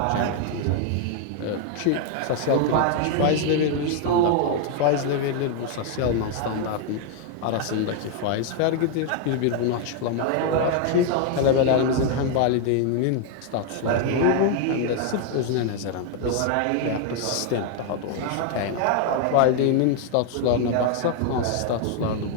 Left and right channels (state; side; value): different; both; correlation 0.00